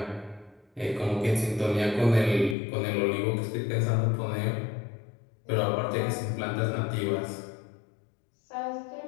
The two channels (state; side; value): drops out; right; at 2.6 s